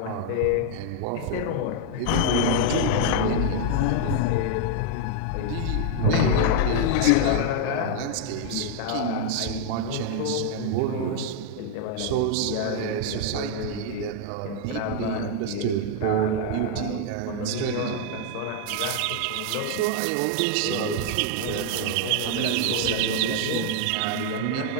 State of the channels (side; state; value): both; different; correlation 0.00